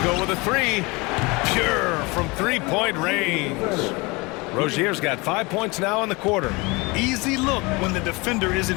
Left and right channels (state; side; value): quieter; right; 25.5 dB